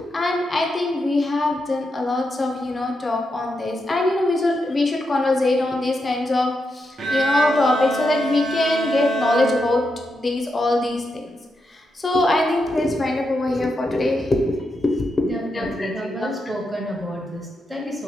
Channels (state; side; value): normal; both; correlation 0.85